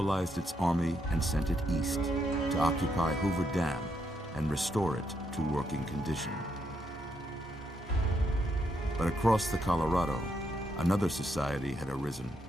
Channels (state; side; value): normal; both; correlation 0.78